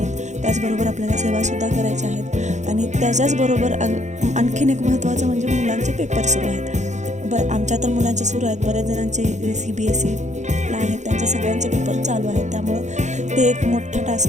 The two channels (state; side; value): late; left; 0.34 ms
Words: त्याचबरोबर आपल्याला सेवासुद्धा करायच्या आहेत आणि त्याच्याचबरोबर आणखीन एक महत्त्वाचं म्हणजे मुलांचे पेपर सुरू आहेत. आमच्या तर मुलांचे सुरू आहेत, बऱ्याच जणांचे CBSEला आहेत, त्यांचे सगळ्यांचे पेपर चालू आहेत. त्यामुळं ते एक मोठा